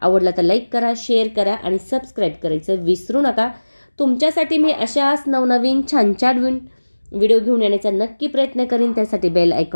तर लाईक करा, शेअर करा आणि सबस्क्राईब करायचं विसरू नका. तुमच्यासाठी मी अशाच नवनवीन छान छान व्हिडिओ घेऊन येण्याचा नक्की प्रयत्न करीन. त्यासाठी बेल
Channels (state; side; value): inverted; both; correlation -1.00